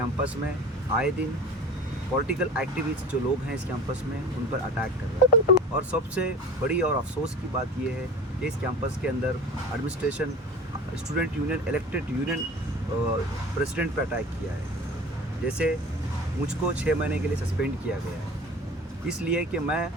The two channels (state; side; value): normal; both; correlation 0.38